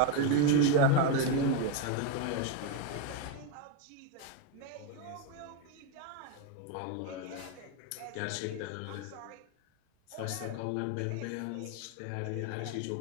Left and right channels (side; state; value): both; different; correlation 0.02